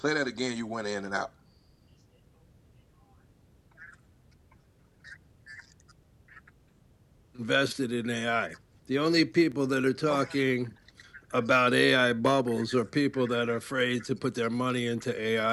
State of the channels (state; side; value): identical; both; correlation 1.00